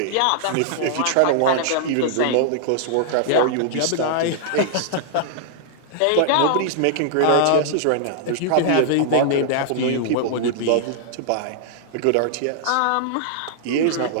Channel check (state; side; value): different; both; correlation -0.01